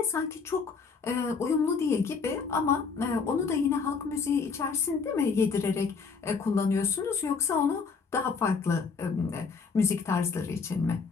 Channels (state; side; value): quieter; right; 5.2 dB